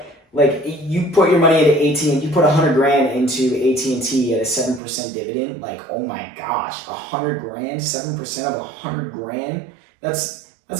Like you put your money into AT&T, you put $100,000 into AT&T at a 7% dividend. Like, oh my gosh, $100,000, 7% of $100,000. That's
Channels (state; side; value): drops out; left; at 4.8 s